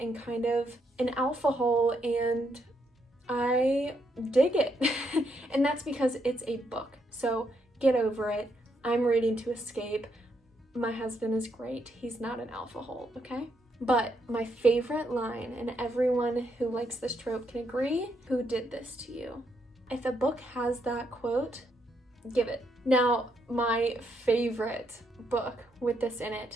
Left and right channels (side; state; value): both; normal; correlation 0.77